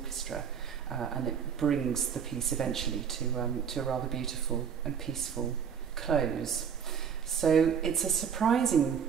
and it brings the piece eventually to a rather beautiful and peaceful close. So it's a surprising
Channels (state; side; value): quieter; left; 7.4 dB